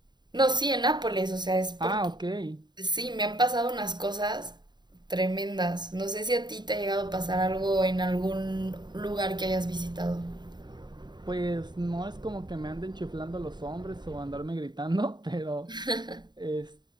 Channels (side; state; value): left; late; 0.21 ms